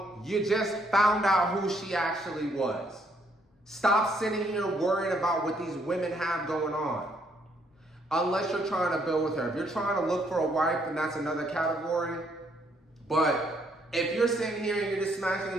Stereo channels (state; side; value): normal; both; correlation 0.70